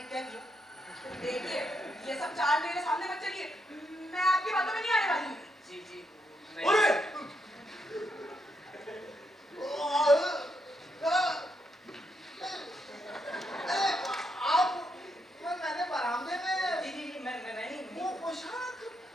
क्या किया? देखिए, ये सब चाल मेरे सामने मत चलिए, मैं आपकी बातों में नहीं आने वाली हूँ। जी जी अरे! मैंने बरामदे में जी जी जी मैं ही वो पोशाक।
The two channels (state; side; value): normal; both; correlation 0.79